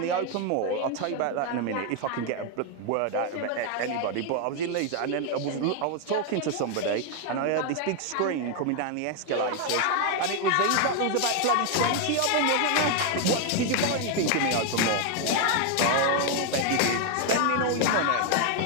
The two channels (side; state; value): both; different; correlation 0.01